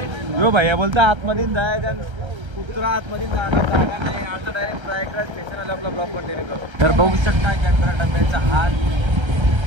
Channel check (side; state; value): left; late; 1.3 ms